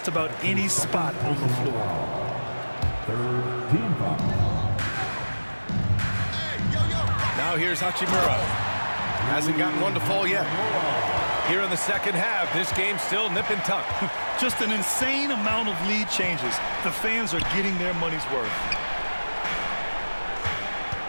about any spot on the floor. Third team foul. Now here's Hachimura. Hasn't gotten one to fall yet. Here in the second half, this game's still nip and tuck. Just an insane amount of lead changes. The fans are getting their money's worth.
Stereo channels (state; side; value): inverted; both; correlation -1.00